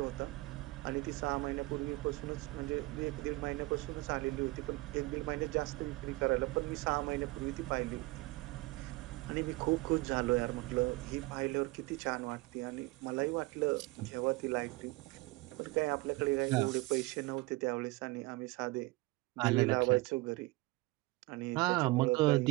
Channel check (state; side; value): quieter; left; 22.2 dB